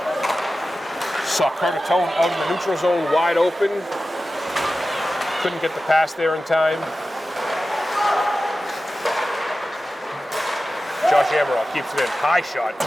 Saw Curtatone out in the neutral zone, wide open. Couldn't get the pass there in time. Josh Amaral keeps it in. High shot.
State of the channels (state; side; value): normal; both; correlation 0.94